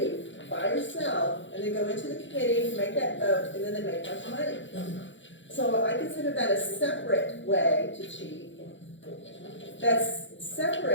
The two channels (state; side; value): late; right; 0.54 ms